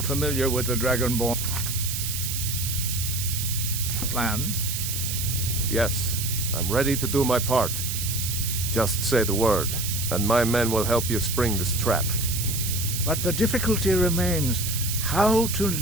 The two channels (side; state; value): right; noise; hiss, 3 dB below the sound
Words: familiar with the Dragonborn plan? Yes, I'm ready to do my part. Just say the word, and my men will help you spring this trap. But the difficulty remains how to